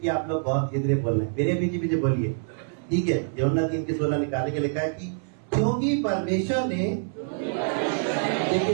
आप लोग बहुत धीरे बोल रहे हैं, मेरे पीछे पीछे बोलिए, ठीक है। यूहन्ना 3:16 निकालने के लिखा है कि क्योंकि परमेश्वर ने,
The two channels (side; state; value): left; silent; 60 dB below the other